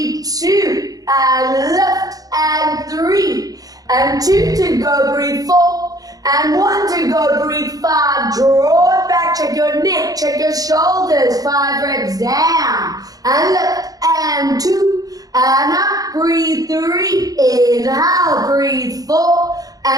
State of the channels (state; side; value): late; left; 0.18 ms